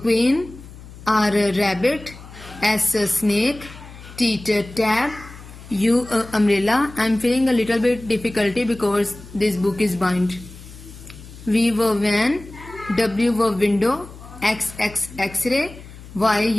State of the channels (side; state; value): left; noise; hum, 17 dB below the sound